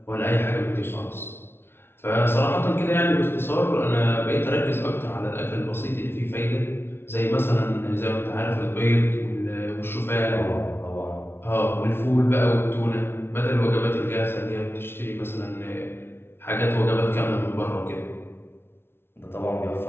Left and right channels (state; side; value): late; right; 0.11 ms